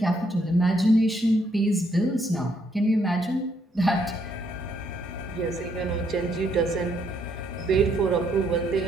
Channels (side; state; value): both; normal; correlation 0.72